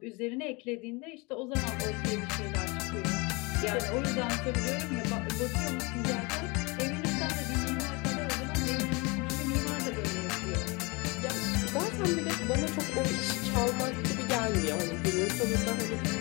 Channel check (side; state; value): right; quieter; 27.2 dB